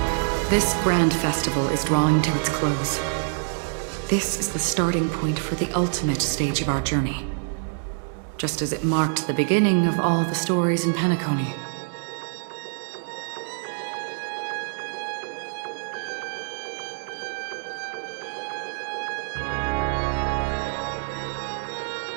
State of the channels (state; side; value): silent; left; digital silence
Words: This grand festival is drawing to its close. This is the starting point for the ultimate stage of our journey. Just as it marked the beginning of all the stories in Penacony.